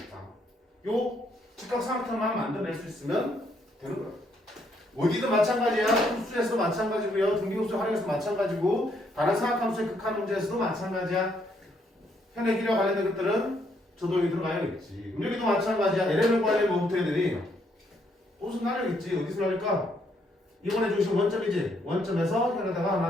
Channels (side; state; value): both; normal; correlation 0.72